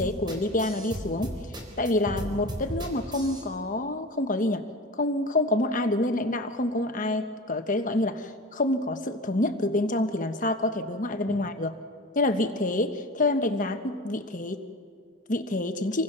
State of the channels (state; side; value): normal; both; correlation 0.33